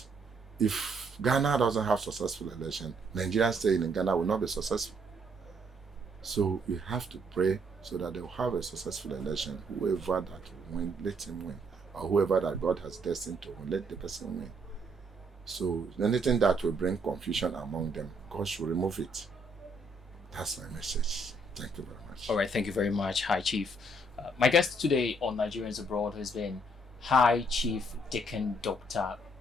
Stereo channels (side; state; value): both; normal; correlation 0.69